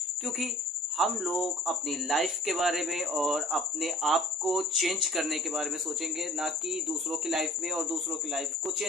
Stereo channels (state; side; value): normal; both; correlation 0.50